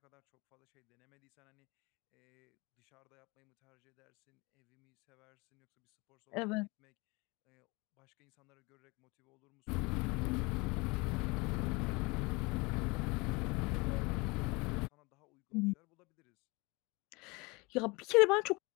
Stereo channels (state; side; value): quieter; right; 26.0 dB